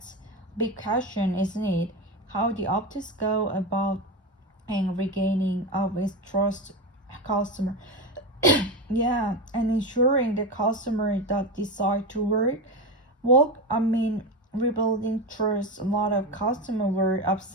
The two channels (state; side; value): normal; both; correlation 0.18